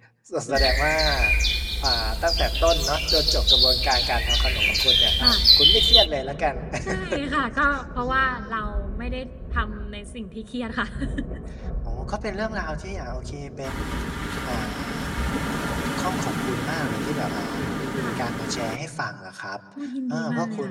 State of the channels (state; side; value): identical; both; correlation 1.00